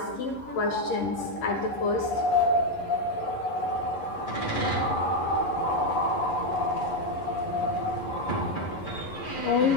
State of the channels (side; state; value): right; late; 11 ms